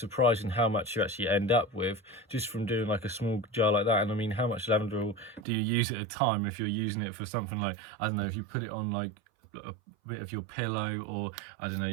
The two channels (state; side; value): drops out; left; at 5.4 s